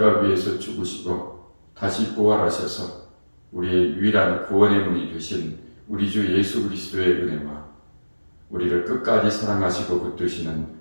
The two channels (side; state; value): both; inverted; correlation -1.00